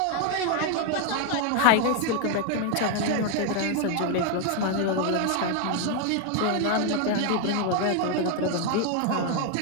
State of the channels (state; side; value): different; both; correlation 0.01